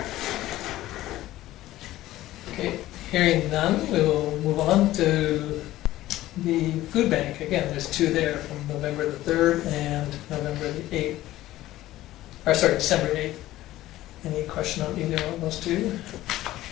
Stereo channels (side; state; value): right; quieter; 15.5 dB